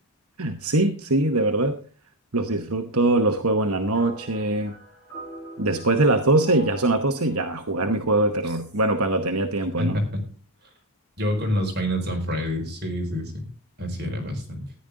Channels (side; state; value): both; normal; correlation 0.09